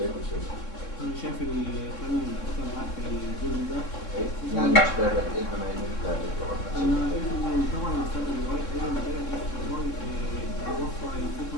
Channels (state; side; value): late; right; 3.6 ms